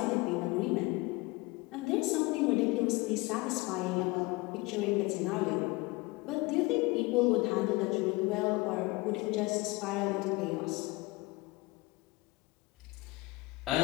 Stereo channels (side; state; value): right; quieter; 23.3 dB